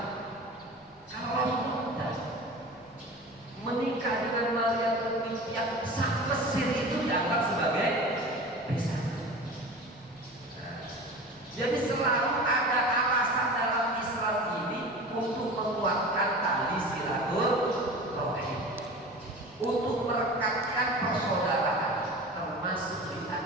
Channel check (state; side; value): noise; left; rumble, 29 dB below the sound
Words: Kalau Rasulullah menikah dengan Mariyatul Qibtiyah, sang Mesir itu dianggap sebagai besan. Jadi selalu ada alasan dalam Islam